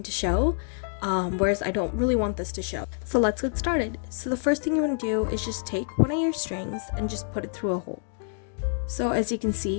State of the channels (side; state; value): right; silent; digital silence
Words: to show, whereas I don't really want this to show. So let's get started. So the first thing you want to do is just take one of your strings and just put it through a hole. So as you can